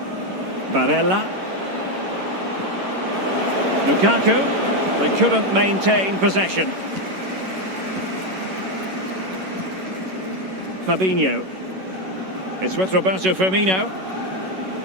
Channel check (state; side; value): late; left; 11 ms